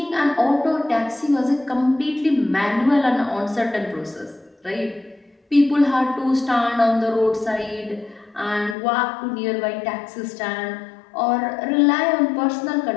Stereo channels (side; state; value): right; drops out; at 8.8 s